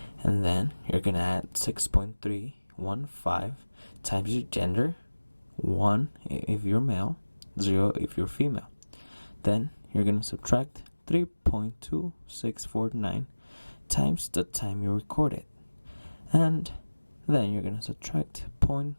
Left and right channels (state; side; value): inverted; both; correlation -1.00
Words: And then you're going to add 6.315 times your gender, 1 if you're male, 0 if you're female. Then you're going to subtract 3.2649 times the time you recorded. And then you're going to subtract